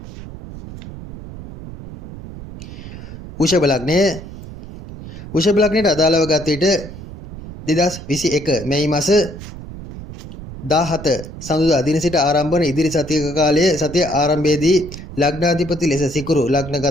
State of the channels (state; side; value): noise; right; rumble, 13 dB below the sound